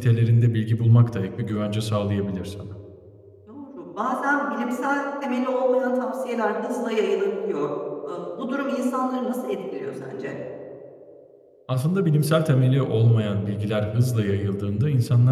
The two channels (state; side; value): identical; both; correlation 1.00